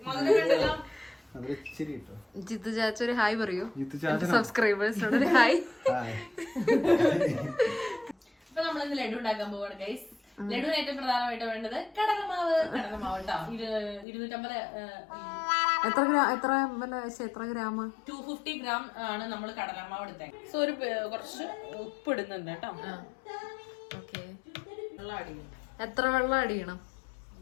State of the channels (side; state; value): right; drops out; at 14.1 s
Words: ജിത്തു ചാച്ച ഒരു ഹായ് പറയൂ സബ്സ്ക്രൈബേഴ്സിനോട്. ഒരു ഹായ്. ഇപ്പൊ നമ്മളിന്ന് ലഡു ഉണ്ടാക്കാൻ പോവാണ് ഗൈസ്. ലഡുവിന് ഏറ്റവും പ്രധാനമായിട്ട് വേണ്ടത് കടലമാവ് കേട്ടോ. 250 എത്ര ഗ്രാം? 250 ഗ്രാം ആണ് നമ്മൾ കടലമാവ് എടുത്തത്. സോ ഒരു കുറച്ച് ഉപ്പ് ഇടുന്നുണ്ട് കേട്ടോ. വെള്ളം ആഡ് ചെയ്യണം. എത്ര വെള്ളം ആഡ് ചെയ്യണം?